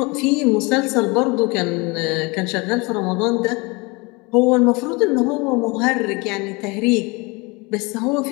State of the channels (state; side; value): quieter; right; 26.8 dB